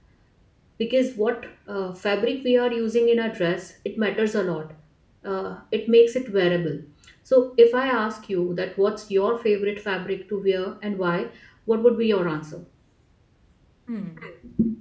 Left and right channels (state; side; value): identical; both; correlation 1.00